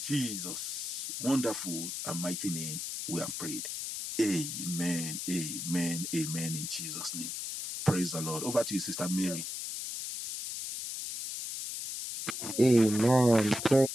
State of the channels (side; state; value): left; noise; hiss, 5 dB below the sound